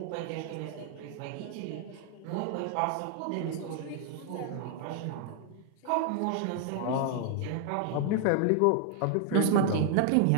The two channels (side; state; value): both; different; correlation 0.00